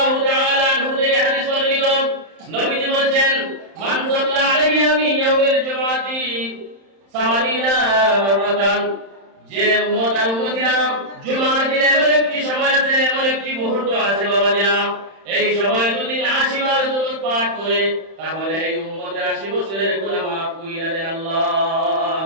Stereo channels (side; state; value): left; late; 31 ms